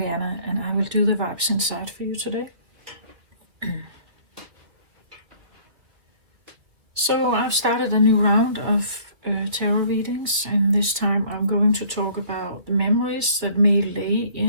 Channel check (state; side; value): late; left; 2.4 ms